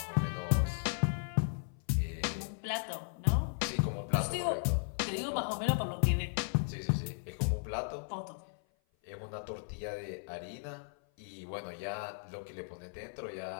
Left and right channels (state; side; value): silent; right; 54 dB below the other